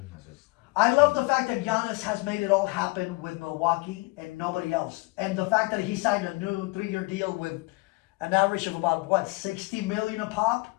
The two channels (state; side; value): quieter; right; 24.7 dB